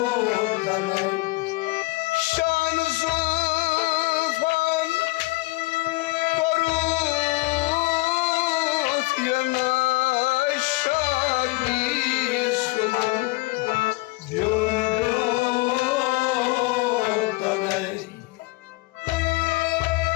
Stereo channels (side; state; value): right; quieter; 22.9 dB